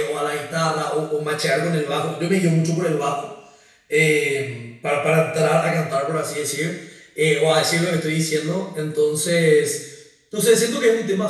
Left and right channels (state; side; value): identical; both; correlation 1.00